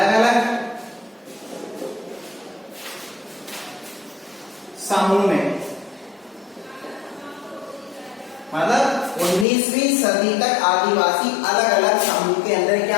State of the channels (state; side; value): drops out; right; at 9.5 s